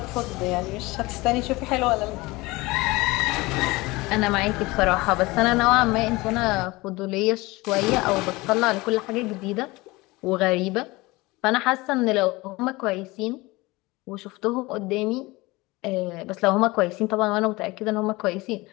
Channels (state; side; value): quieter; right; 21.9 dB